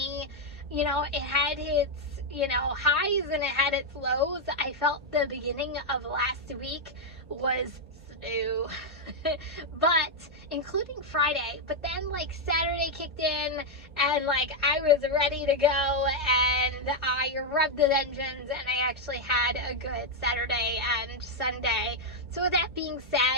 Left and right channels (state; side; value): normal; both; correlation 0.01